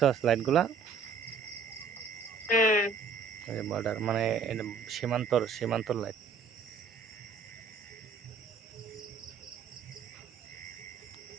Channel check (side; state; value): left; quieter; 5.0 dB